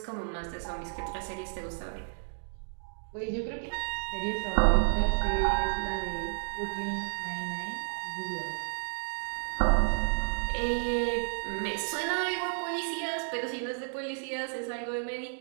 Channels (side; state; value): left; silent; digital silence